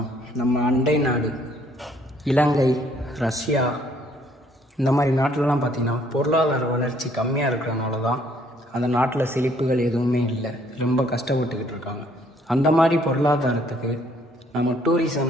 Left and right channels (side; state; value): both; normal; correlation 0.64